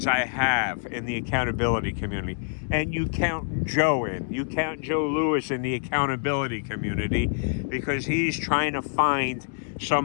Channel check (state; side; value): silent; right; digital silence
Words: I have in the accountability community. And you count Joe in. You count Joe Lewis in the accountability community because he's trying to find